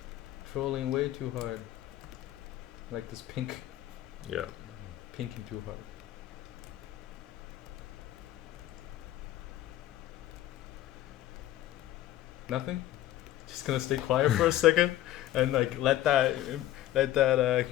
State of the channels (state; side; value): quieter; right; 13.8 dB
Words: Trolling way too hard. Like this pink. Yeah. Pinking too hard. Nothing? Just gonna stay quiet for a second and like let that